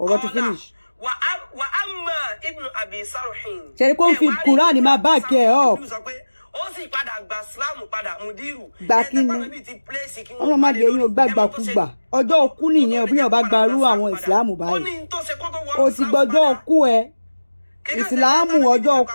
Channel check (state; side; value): inverted; both; correlation -1.00